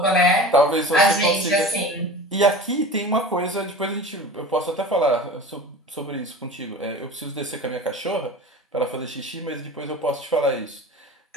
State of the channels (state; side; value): normal; both; correlation 0.36